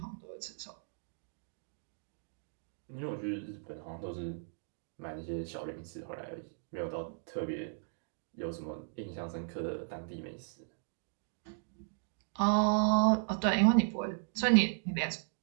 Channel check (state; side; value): silent; left; digital silence